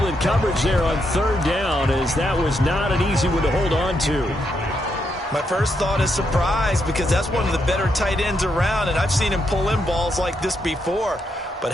coverage there on 3rd down, as that was not an easy one to hold on to. My first thought is surprise, because that's one of the better tight ends around, and I've seen him pull in balls like this before. But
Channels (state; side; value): normal; both; correlation 0.80